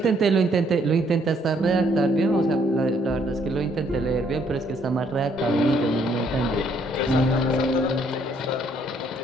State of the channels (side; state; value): both; normal; correlation 0.67